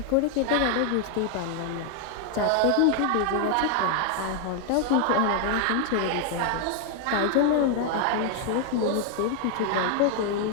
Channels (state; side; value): different; both; correlation 0.00